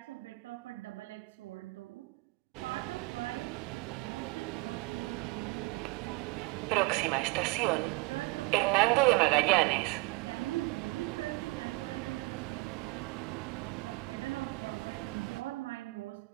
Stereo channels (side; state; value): left; quieter; 24.6 dB